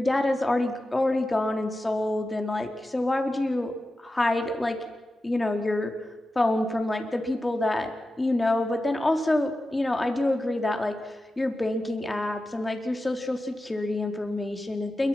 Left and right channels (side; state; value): both; normal; correlation 0.92